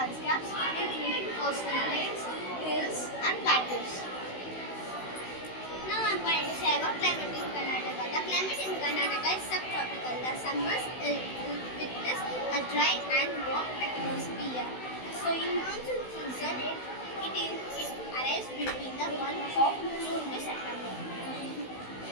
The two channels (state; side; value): late; right; 16 ms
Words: including coastal plains, hills and plateaus. Now I am going to say about climate in Karnataka. The climate in Karnataka is subtropical. The summers witness a dry and warm atmosphere. So in monsoon season, it arrives between the month of June to September.